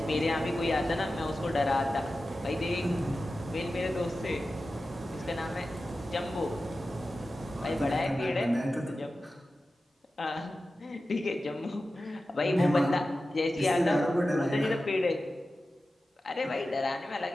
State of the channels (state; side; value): normal; both; correlation 0.94